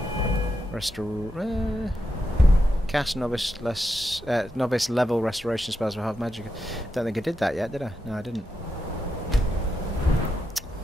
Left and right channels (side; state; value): both; normal; correlation 0.86